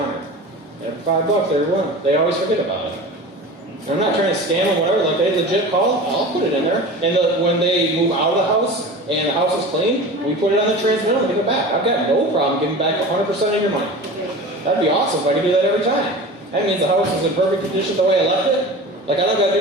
Every $5, they always forget about it. I'm not trying to scam them, whatever. Like, they legit call, I'll put it in there. And when they move out of the house and the house is clean, we put it on the transmitter and give it back. I've got no problem giving back 100% of your money. That'd be awesome if I could do that every time. That means the house is in perfect condition the way I left it. Like, I don't got to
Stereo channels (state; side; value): normal; both; correlation 0.34